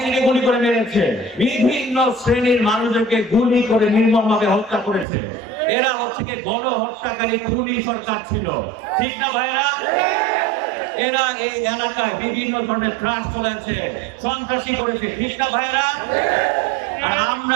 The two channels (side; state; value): left; drops out; at 5.1 s